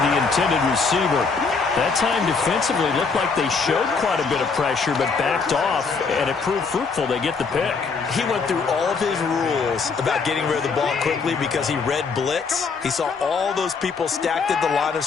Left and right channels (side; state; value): right; quieter; 4.9 dB